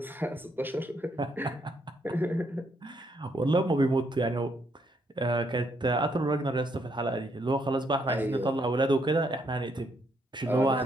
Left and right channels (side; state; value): both; normal; correlation 0.74